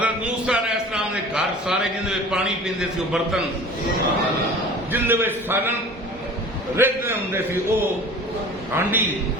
موسیٰ علیہ السلام نے گھر سارے جن میں پانی پیندے سی وہ برتن، جن میں سالن رہتے ہوں سی وہ ہانڈی،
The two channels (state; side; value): normal; both; correlation 0.42